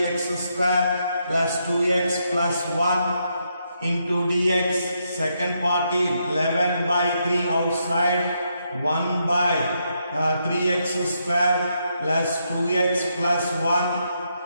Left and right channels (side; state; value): both; inverted; correlation -0.79